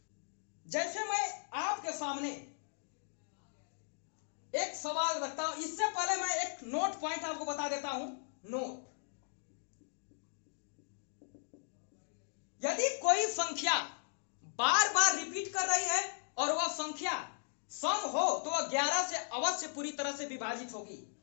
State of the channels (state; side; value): silent; right; digital silence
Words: जैसे मैं आपके सामने एक सवाल रखता हूं, इससे पहले मैं एक नोट पॉइंट आपको बता देता हूं। नोट, यदि कोई संख्या बार बार रिपीट कर रही है और वह संख्या सम हो तो वह 11 से अवश्य पूरी तरह से विभाजित होगी।